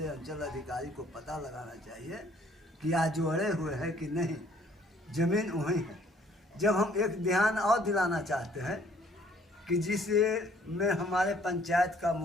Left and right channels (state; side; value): normal; both; correlation 0.60